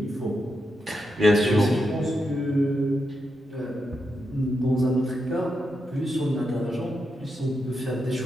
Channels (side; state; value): both; normal; correlation 0.85